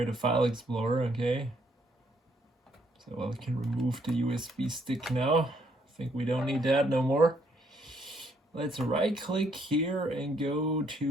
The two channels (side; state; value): both; normal; correlation 0.70